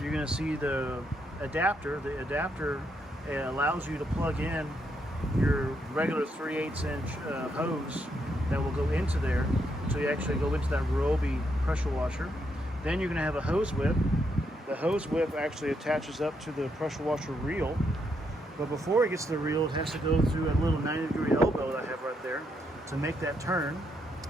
going to see the adapter. The adapter allows you to plug in your regular 3/8 inch hose that will go into there, so you actually go into that Ryobi pressure washer. Then you're going to have a hose whip. The hose whip actually attaches up to the pressure washer reel, but before it gets to the reel, it has to go through a little 90-degree elbow that I have right there to make that turn.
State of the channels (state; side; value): normal; both; correlation 0.78